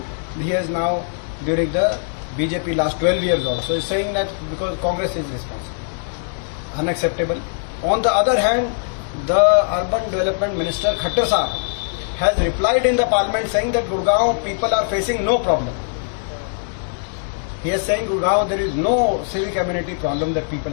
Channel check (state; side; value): silent; right; digital silence